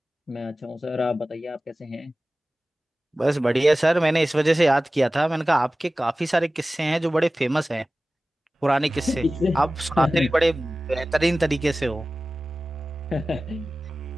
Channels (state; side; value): normal; both; correlation 0.97